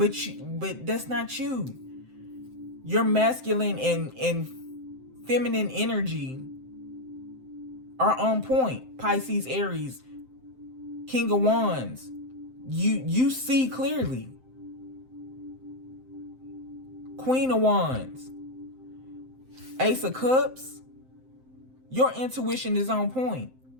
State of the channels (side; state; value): left; late; 7.7 ms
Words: that's not you. Your masculine and feminine energy are on point. Pisces, Aries, King of Wands. You see clearly. Queen of Wands, Ace of Cups. Your intuition is on point.